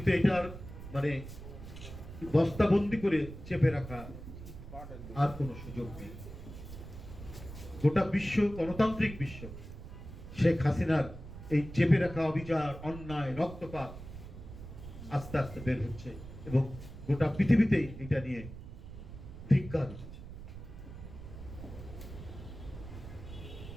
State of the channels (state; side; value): noise; right; rumble, 12 dB below the sound